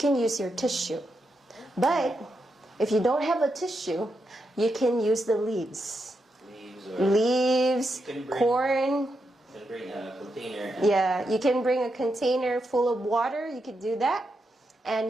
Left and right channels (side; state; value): both; normal; correlation 0.84